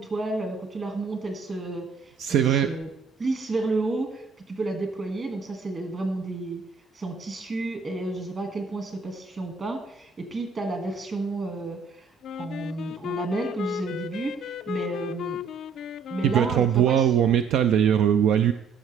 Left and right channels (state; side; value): quieter; left; 5.6 dB